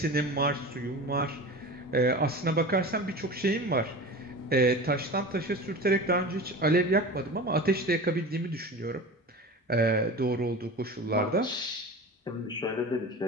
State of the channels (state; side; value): normal; both; correlation 0.33